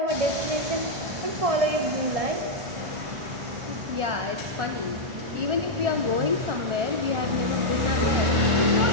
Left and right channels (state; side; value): late; left; 1.4 ms